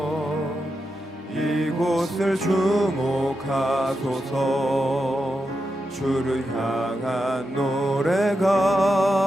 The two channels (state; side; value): normal; both; correlation 0.87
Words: 이곳을 주목하소서. 주를 향한